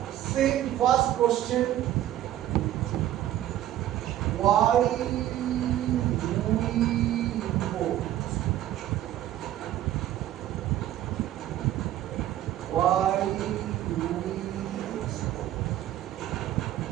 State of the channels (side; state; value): left; quieter; 12.9 dB